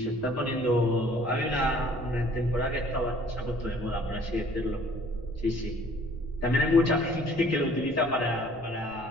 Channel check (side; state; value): left; noise; rumble, 19 dB below the sound